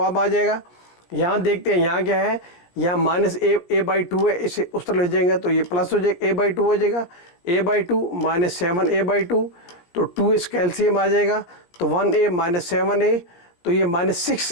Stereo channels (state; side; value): late; right; 17 ms